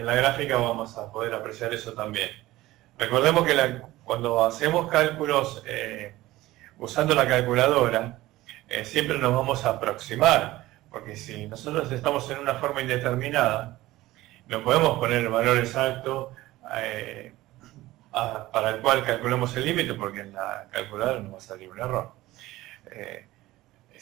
la gráfica vamos a poder apreciar eso también. Recordemos que cuando hacemos cálculos usando la calculadora, siempre nos vamos a aproximar, porque si nosotros estamos en una forma indeterminada, no podemos poner el valor exacto para el cual calculamos el límite, porque en la calculadora nos va a salir un error.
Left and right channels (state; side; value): quieter; left; 17.3 dB